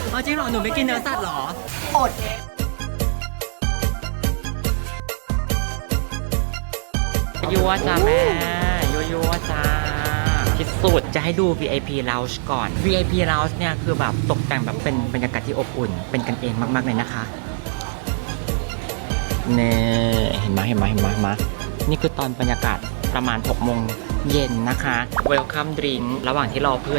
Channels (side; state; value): left; silent; digital silence